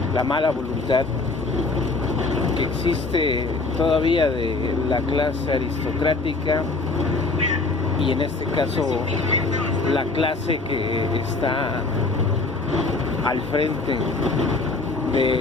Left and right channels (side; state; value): right; quieter; 3.6 dB